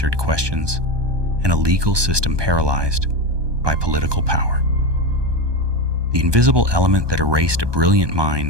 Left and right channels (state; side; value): late; left; 1.2 ms